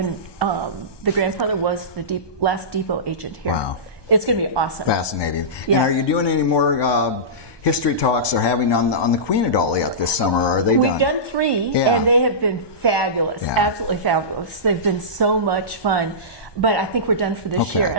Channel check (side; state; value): right; late; 1.2 ms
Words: the grandfather was the last depot agent here. Wow. It's going to be awesome. Fascinating. Yeah. And are you doing any more history talks or having on the Queen at all yet this summer? Or are they done? We've done 3, and they have been fabulous, absolutely fabulous. They've been so much fun. But I think we're done for this year.